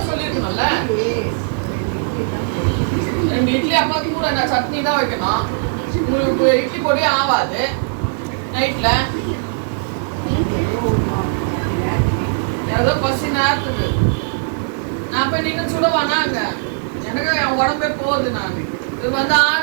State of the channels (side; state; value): left; silent; 67 dB below the other